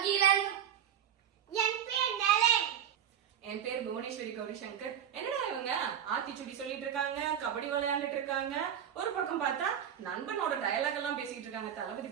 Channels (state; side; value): quieter; left; 9.3 dB